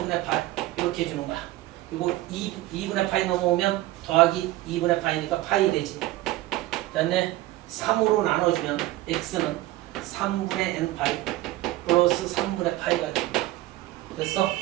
파이 이렇게 해주는 거야. 그리고 2분의 파이 넘어오면 더하기 2분의 파이니까 파이 되지. 그다음에 3으로 나눠주면 x는 3분의 n파이 플러스 3분의 파이가 됩니다. 그래서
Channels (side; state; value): left; quieter; 16.8 dB